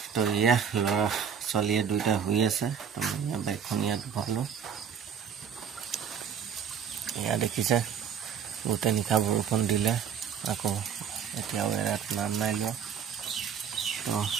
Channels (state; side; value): quieter; left; 7.7 dB